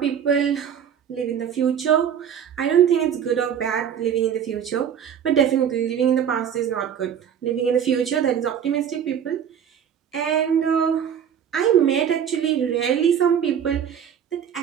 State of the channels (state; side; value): quieter; left; 8.5 dB